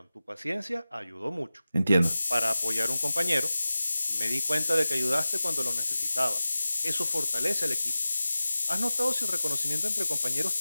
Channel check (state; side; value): inverted; both; correlation -0.95